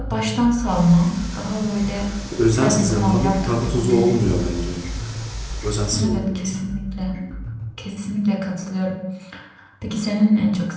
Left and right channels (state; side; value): identical; both; correlation 1.00